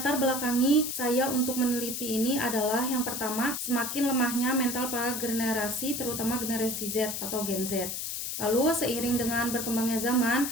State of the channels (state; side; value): noise; left; hiss, 4 dB below the sound